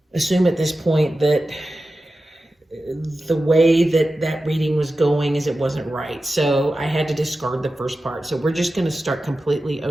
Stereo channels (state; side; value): normal; both; correlation 0.93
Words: assume at this point that the way that reading was going is it wasn't right. So I had to discard the first part. So we're just going to start completely